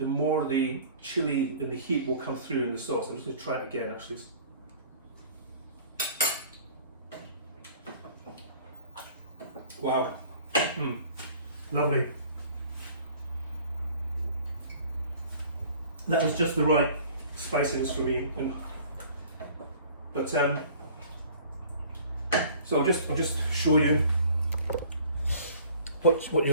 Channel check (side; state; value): both; inverted; correlation -0.49